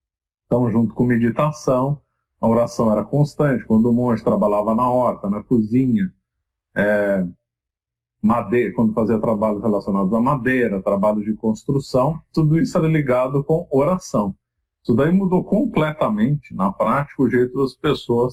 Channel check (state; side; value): identical; both; correlation 1.00